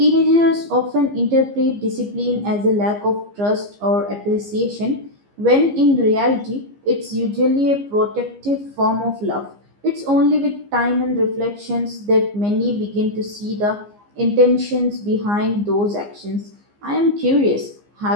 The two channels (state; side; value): late; left; 15 ms